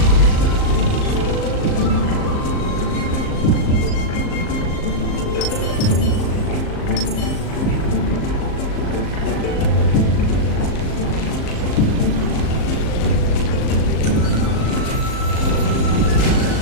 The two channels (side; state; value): right; late; 38 ms